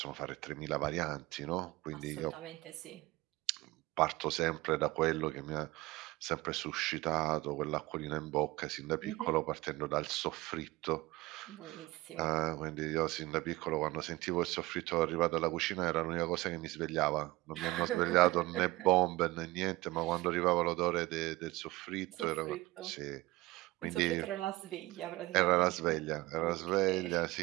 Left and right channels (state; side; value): quieter; left; 20.1 dB